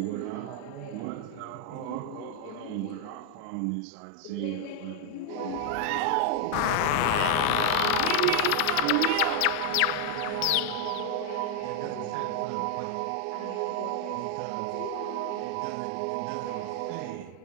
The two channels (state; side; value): different; both; correlation 0.00